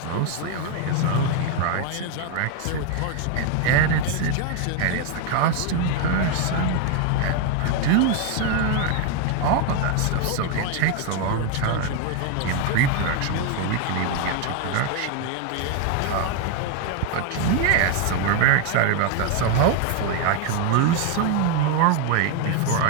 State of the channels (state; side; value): different; both; correlation 0.01